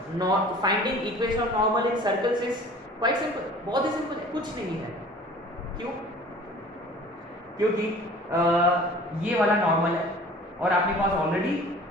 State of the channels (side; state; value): both; normal; correlation 0.46